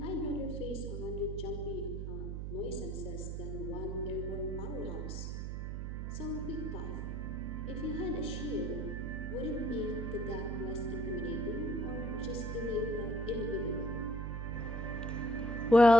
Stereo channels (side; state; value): right; noise; hum, 4 dB below the sound